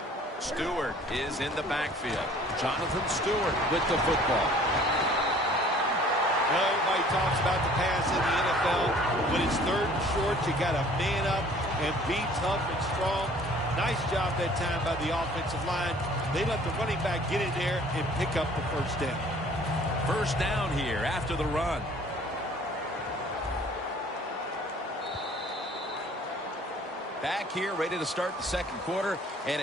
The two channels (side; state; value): both; normal; correlation 0.53